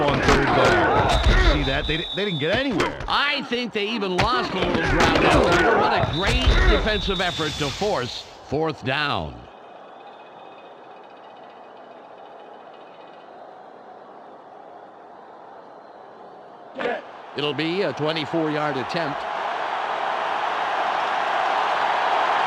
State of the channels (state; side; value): identical; both; correlation 1.00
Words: on third down. See that? They didn't get anywhere. I think they even lost a little ground out here. What a great defensive effort to force 4th down. It'll be a 24-yard attempt.